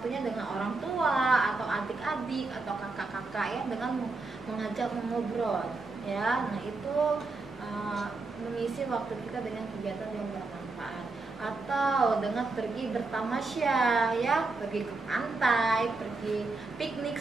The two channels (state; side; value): quieter; left; 3.6 dB